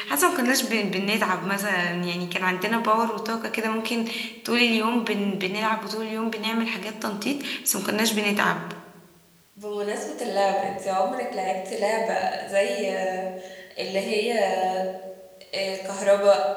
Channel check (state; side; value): identical; both; correlation 1.00